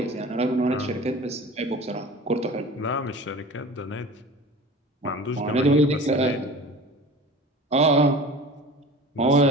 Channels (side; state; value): both; normal; correlation 0.38